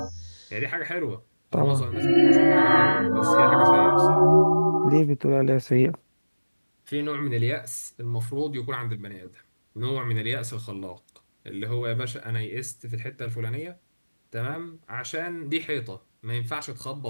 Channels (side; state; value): both; inverted; correlation -1.00